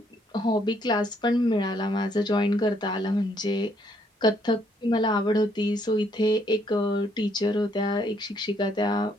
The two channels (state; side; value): normal; both; correlation 0.69